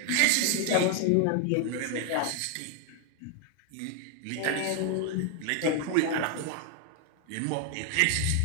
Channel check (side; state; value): both; different; correlation 0.00